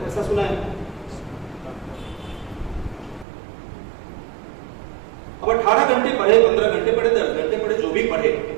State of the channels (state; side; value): drops out; left; at 3.2 s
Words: ऐसा सुना है? अब 18 घंटे पढ़े, 15 घंटे पढ़े, 10 घंटे पढ़े, जो भी पढ़े,